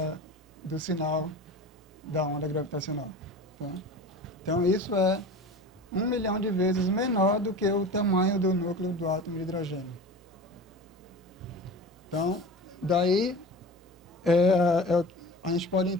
do sinal da onda gravitacional. Tá? Então isso é 1 milhão de vezes menor do que o tamanho do núcleo do átomo de hidrogênio. Então, daí a gente pode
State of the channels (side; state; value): both; normal; correlation 0.35